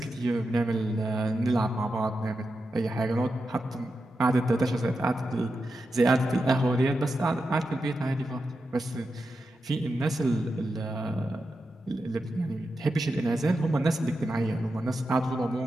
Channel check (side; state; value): both; normal; correlation 0.89